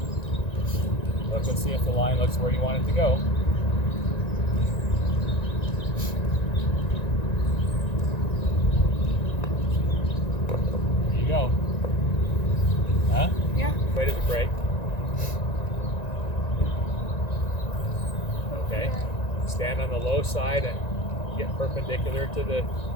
Look and see if the line looks where you want it to go. There you go. Huh? Yeah. Weight of the brake. Okay. Stand on the low side and get perpendicular to the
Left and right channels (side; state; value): right; late; 1.9 ms